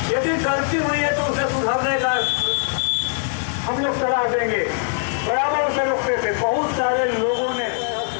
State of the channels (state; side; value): silent; right; 65 dB below the other